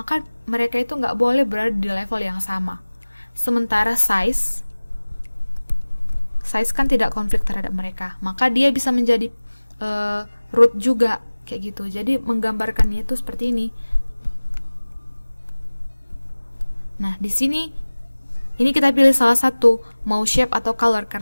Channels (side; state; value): both; inverted; correlation -1.00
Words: mereka itu nggak boleh berada di level yang sama. Sementara size kan tidak konflik terhadap mereka, maka dia bisa menjadi root juga kayak gitu. Jadi menggambarkannya itu seperti ini. Nah, di sini ini kita pilih salah satu, mau shape atau color,